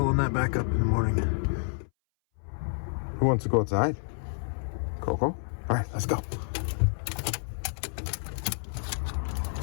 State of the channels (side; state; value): right; silent; 58 dB below the other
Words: that back up in the morning. Who wants to go outside? Coco? All right, let's go.